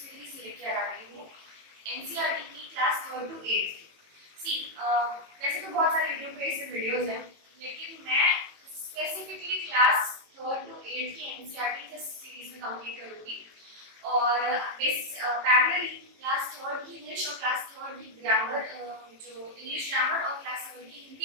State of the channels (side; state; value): left; late; 18 ms